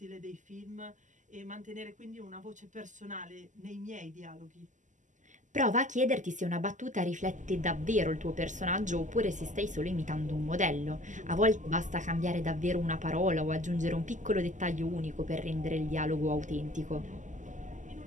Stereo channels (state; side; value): late; left; 0.36 ms